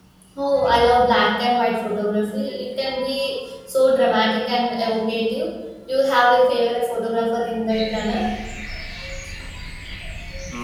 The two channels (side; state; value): both; identical; correlation 1.00